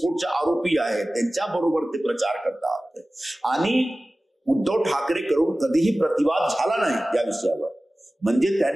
आरोपी आहे, त्यांच्या बरोबर ते प्रचार करतात. आणि उद्धव ठाकरे करून कधीही प्रतिवाद झाला नाही या विषयावर, म्हणजे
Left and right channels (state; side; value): normal; both; correlation 0.97